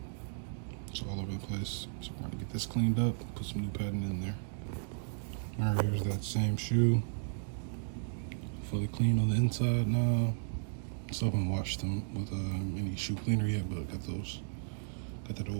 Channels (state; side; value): silent; left; digital silence